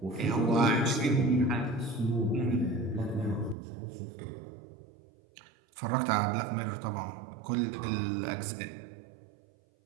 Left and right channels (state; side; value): drops out; left; at 3.6 s